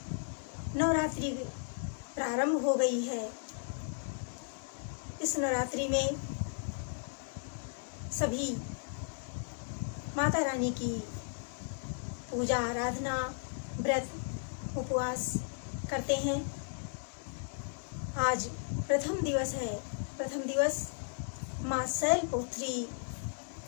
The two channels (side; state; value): right; silent; digital silence